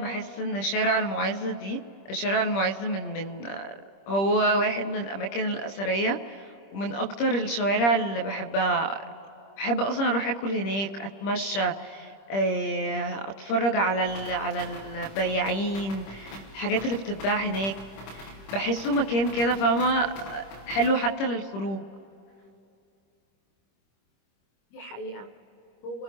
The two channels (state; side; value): late; right; 26 ms